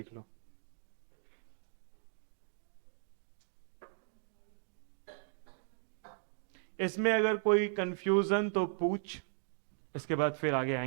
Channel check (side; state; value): left; silent; digital silence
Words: लो। इसमें अगर कोई कंफ्यूजन तो पूछ, इसके बाद फिर आगे